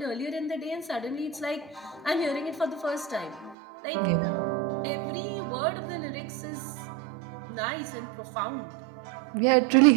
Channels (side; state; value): left; drops out; at 3.6 s